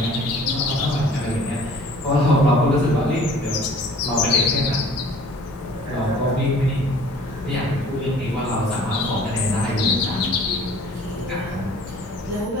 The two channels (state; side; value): normal; both; correlation 0.51